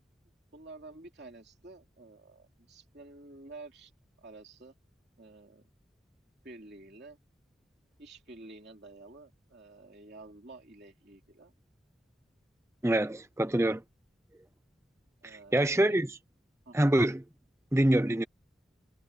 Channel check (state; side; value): normal; both; correlation 0.87